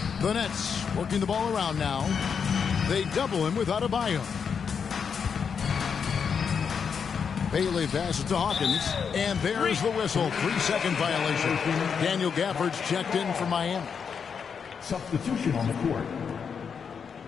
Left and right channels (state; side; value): quieter; right; 6.5 dB